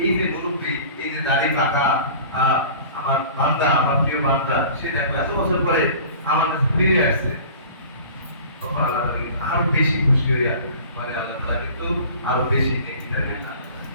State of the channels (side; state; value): both; inverted; correlation -0.43